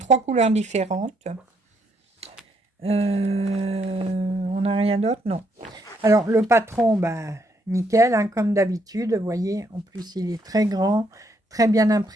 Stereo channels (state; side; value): normal; both; correlation 0.73